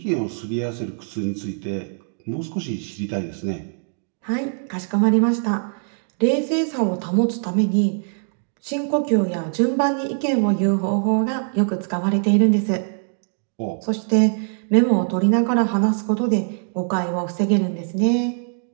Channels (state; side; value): silent; left; 64 dB below the other